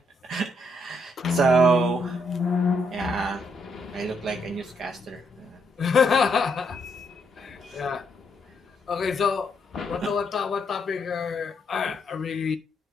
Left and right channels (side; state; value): both; normal; correlation 0.76